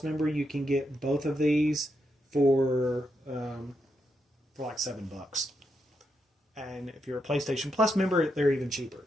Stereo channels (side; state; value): both; normal; correlation 0.83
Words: member, you can get both of these for like $7. And if you're a PlayStation Plus member, they're even cheaper.